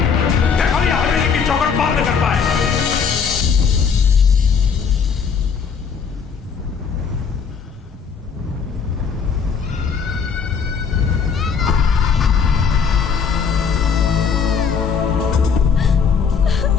देखो ये हवेली की चौखट पार न कर पाए।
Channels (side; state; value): right; quieter; 6.2 dB